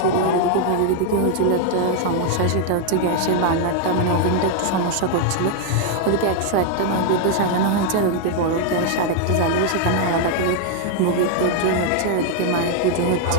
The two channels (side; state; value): both; different; correlation 0.00